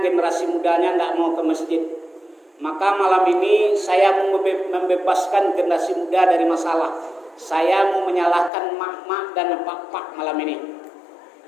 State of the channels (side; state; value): right; drops out; at 8.5 s